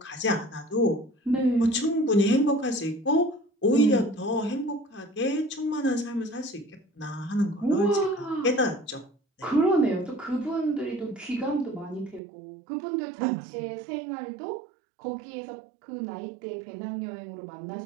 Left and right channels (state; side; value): drops out; left; at 12.2 s